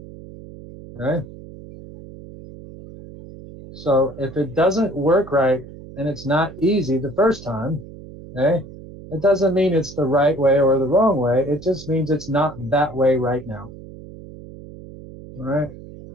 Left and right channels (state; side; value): noise; right; hum, 16 dB below the sound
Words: Okay, so if it doesn't work right and it's not easy the first time, okay, it doesn't mean it's the right way or the wrong way. It just means it's not that way right now. All right.